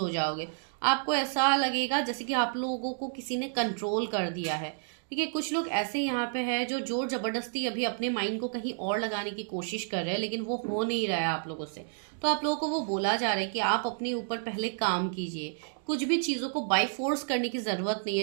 जाओगे। आपको ऐसा लगेगा जैसे कि आप लोगों को किसी ने कंट्रोल कर दिया है, ठीक है। कुछ लोग ऐसे यहाँ पे है जो जोर जबरदस्ती अभी अपने माइंड को कहीं और लगाने की कोशिश कर रहे हैं, लेकिन वो हो नहीं रहा है आप लोगों से। तो आप लोगों को वो बोला जा रहा है कि आप अपने ऊपर पहले काम कीजिए, कुछ भी चीज़ों को बाई फोर्स करने की ज़रूरत नहीं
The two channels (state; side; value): silent; left; digital silence